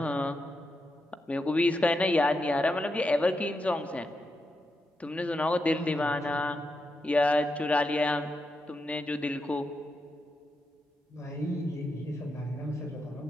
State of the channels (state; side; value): normal; both; correlation 0.85